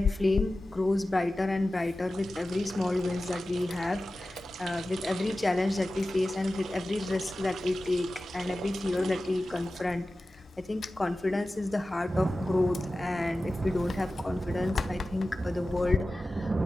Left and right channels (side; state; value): both; normal; correlation 0.95